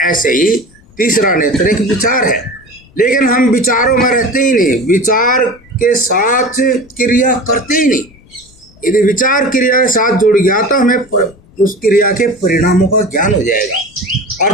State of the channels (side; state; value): left; noise; rumble, 28 dB below the sound